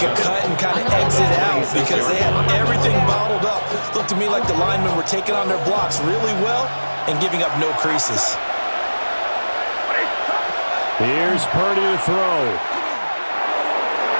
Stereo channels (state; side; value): inverted; both; correlation -1.00